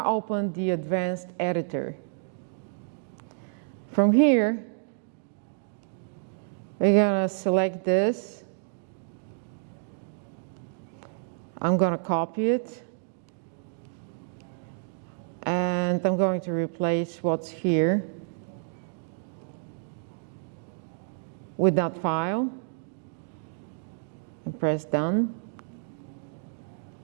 open the advanced editor. From here, we're going to select this. I'm going to copy it. And I'm going to replace what's here with that file. And press done.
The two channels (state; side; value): silent; left; digital silence